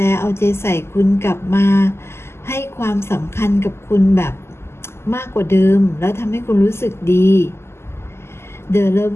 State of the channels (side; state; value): right; late; 0.12 ms